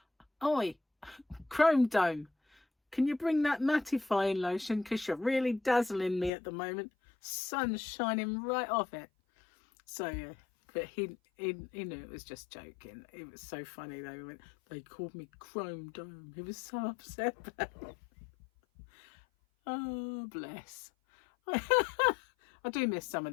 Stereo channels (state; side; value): drops out; right; at 6.3 s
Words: "Oi, Chrome Dome, can you bring that mattifying lotion? Because you're really dazzling me at the moment. Sun's shining right off it." So yeah, But he knew it was just joking. It was so funny though. They called me Chrome Dome. He was so upset about it. Oh, bless. I do miss some